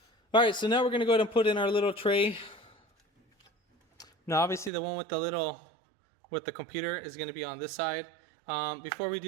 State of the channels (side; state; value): left; drops out; at 4.7 s